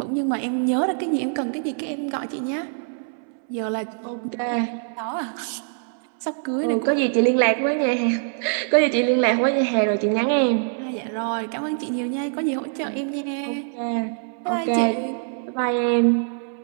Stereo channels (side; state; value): left; silent; 61 dB below the other